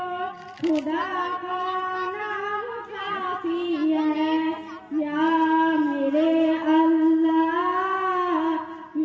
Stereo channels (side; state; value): both; identical; correlation 1.00